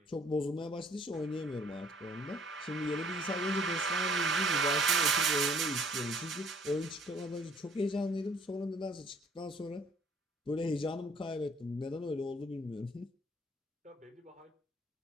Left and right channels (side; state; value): both; normal; correlation 0.59